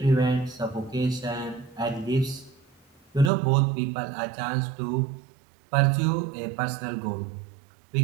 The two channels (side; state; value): left; drops out; at 3.3 s